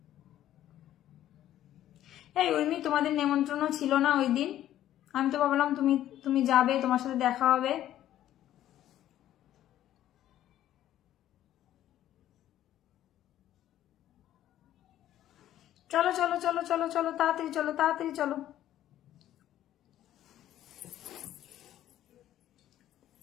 এই উর্মি, তোমাদের নেমন্ত্রণ ছিল না ওই দিন? আমি তো ভাবলাম তুমি তুমি যাবে, তোমার সাথে দেখা হবে। চলো চলো চলো চলো চলো, তাড়াতাড়ি চলো, তাড়াতাড়ি চলো।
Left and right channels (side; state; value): right; quieter; 12.5 dB